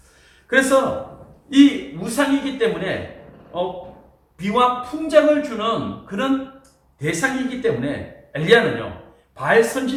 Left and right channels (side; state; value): both; identical; correlation 1.00